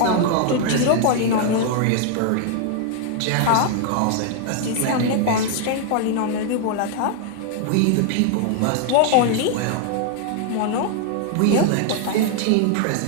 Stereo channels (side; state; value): both; different; correlation 0.00